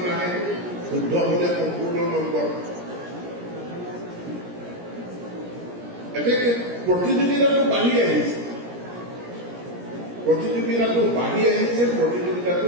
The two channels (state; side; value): late; left; 17 ms